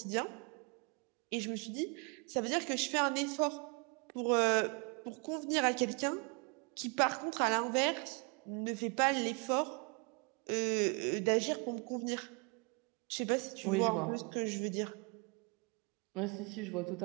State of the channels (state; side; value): quieter; left; 33.0 dB